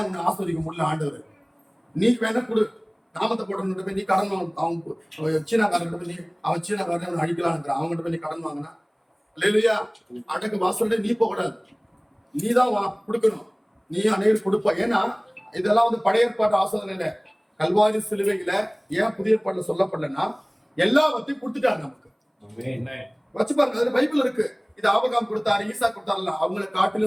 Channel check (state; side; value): identical; both; correlation 1.00